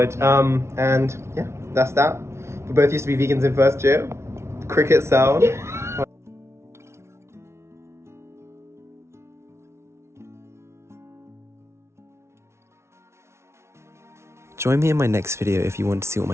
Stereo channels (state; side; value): late; left; 0.13 ms